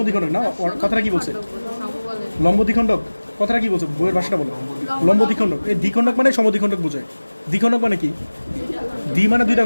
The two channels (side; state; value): both; inverted; correlation -1.00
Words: না? কথাটা কি বলছে? লম্ব দ্বিখণ্ডক। কথাটা কি বলছে? বইয়ের ভাষাটা বলো। লম্ব দ্বিখণ্ডক। এই দ্বিখণ্ডক মানে সমদ্বিখণ্ডক বোঝায়। দ্বিখণ্ডক মানে কি? দ্বি মানে দুইটা